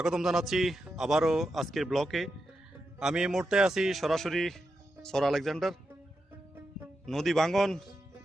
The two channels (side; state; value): both; normal; correlation 0.87